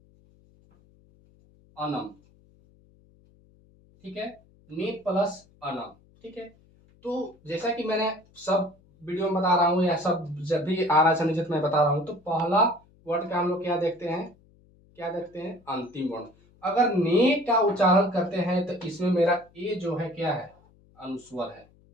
अनम। ठीक है, ने प्लस अनम। ठीक है, तो जैसा कि मैंने सब वीडियो में बता रहा हूँ या सब जब भी आ रहा है संयोजित मैं बता रहा हूँ, तो पहला वर्ड का हम लोग क्या देखते हैं, अंतिम वर्ण। अगर ने का उच्चारण करते हैं तो इसमें मेरा ए जो है क्या है, अनुस्वर है,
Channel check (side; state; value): left; noise; hum, 30 dB below the sound